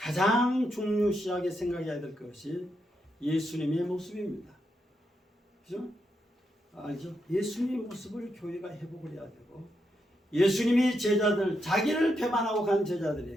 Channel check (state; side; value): normal; both; correlation 0.82